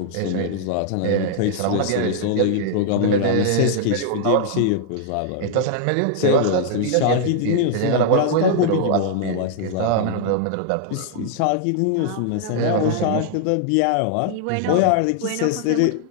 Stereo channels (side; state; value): both; different; correlation -0.01